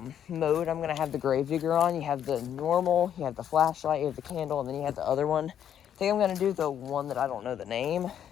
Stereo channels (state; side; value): quieter; right; 9.5 dB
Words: mode I'm gonna have the gravedigger on, you have the normal, you have the flashlight, you have the candle, and then you have the other one. I think I'm gonna do the one that I don't know the name,